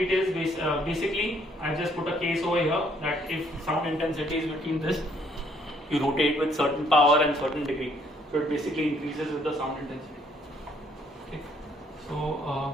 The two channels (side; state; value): both; normal; correlation 0.66